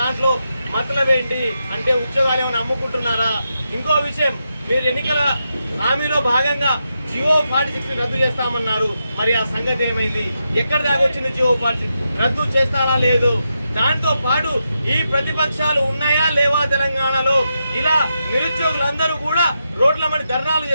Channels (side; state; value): both; inverted; correlation -0.86